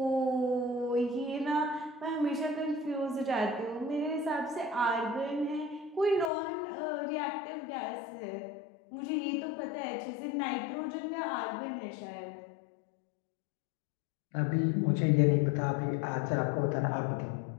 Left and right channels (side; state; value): right; drops out; at 6.3 s